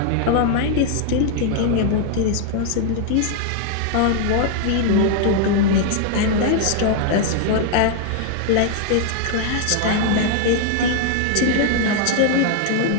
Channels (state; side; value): different; both; correlation 0.00